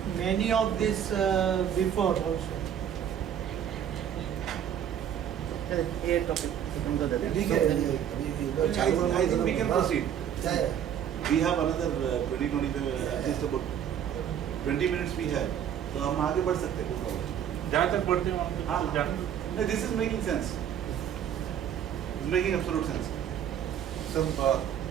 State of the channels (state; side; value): quieter; left; 9.4 dB